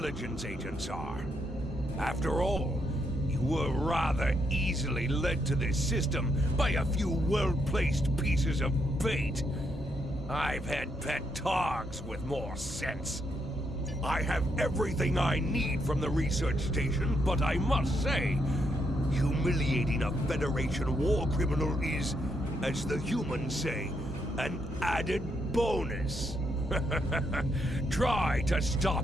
agents are. After all, you were rather easily led to this system by a few well-placed pieces of bait. I've had pet dogs with more sense. I have everything I need from the research station, but I must say, humiliating a Federation war criminal is, as the humans say, an added bonus. Try to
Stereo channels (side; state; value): both; normal; correlation 0.77